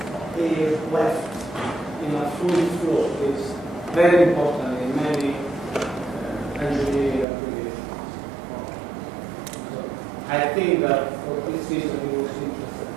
air left in a fluid flow is very important in many engineering applications. So I think that for this reason he was interested.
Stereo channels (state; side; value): drops out; left; at 7.2 s